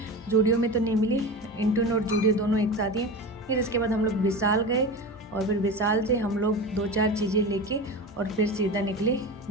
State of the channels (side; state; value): both; normal; correlation 0.27